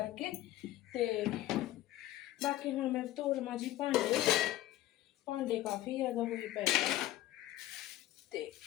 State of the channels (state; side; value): quieter; right; 14.6 dB